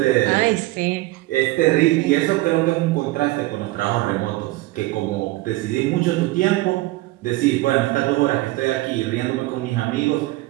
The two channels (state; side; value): quieter; left; 19.0 dB